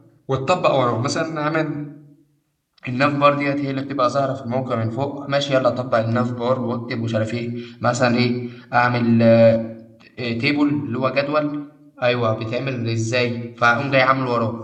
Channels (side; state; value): both; identical; correlation 1.00